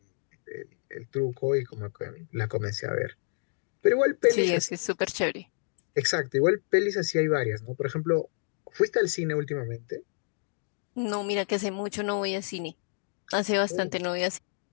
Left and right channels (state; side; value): silent; right; digital silence